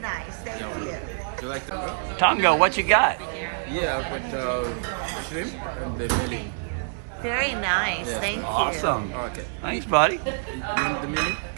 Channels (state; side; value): silent; left; digital silence